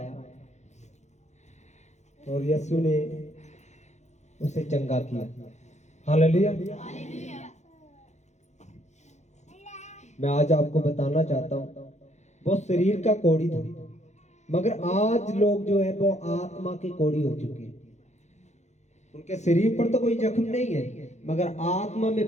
और यीशु ने उसे चंगा किया। हालेलुया। मैं आज आपको बताना चाहता हूँ, वो शरीर का कोढ़ी था, मगर आज लोग जो है वो आत्मा के कोढ़ी हो चुके हैं। उनके शरीर पर तो कोई जख्म नहीं है, मगर आत्मा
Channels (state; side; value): late; right; 0.33 ms